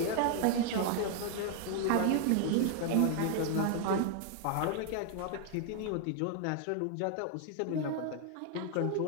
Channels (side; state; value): both; different; correlation 0.00